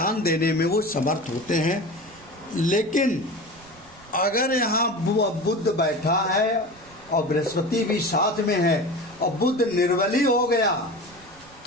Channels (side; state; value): right; noise; rumble, 25 dB below the sound